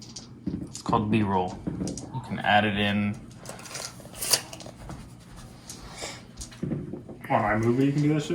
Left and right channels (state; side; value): identical; both; correlation 1.00